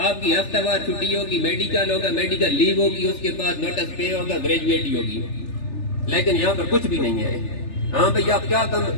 آپ کی ہفتہ وار چھٹی ہوگی، میڈیکل ہوگا، میڈیکل لیو ہوگی، اس کے بعد نوٹس پے ہوگا، گریجویٹی ہوگی۔ لیکن یہاں پر کچھ بھی نہیں ہے۔ ہاں بھئی آپ کیا کام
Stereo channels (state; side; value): late; right; 3.4 ms